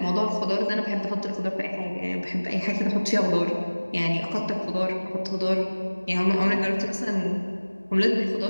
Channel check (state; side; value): inverted; both; correlation -1.00